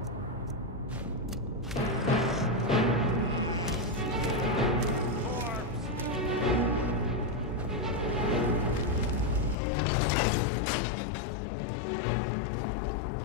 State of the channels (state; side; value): drops out; right; at 9.6 s